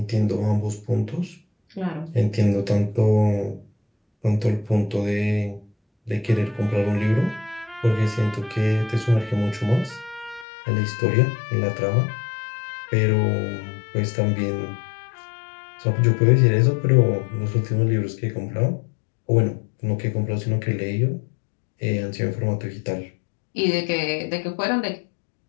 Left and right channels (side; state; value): right; drops out; at 10.5 s